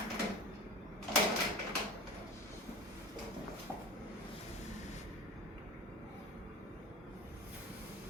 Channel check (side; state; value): both; normal; correlation 0.33